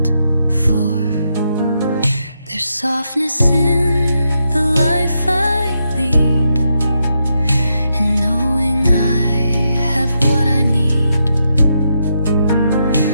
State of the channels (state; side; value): inverted; both; correlation -0.82